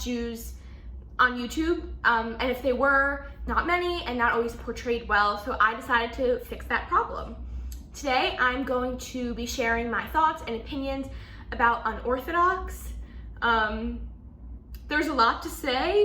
Jews on YouTube, and if they were, not many and not always portrayed well, so I decided to fix that problem. Today, I'm going to be sharing my thoughts and opinions about Unorthodox. There's a lot to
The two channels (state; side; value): identical; both; correlation 1.00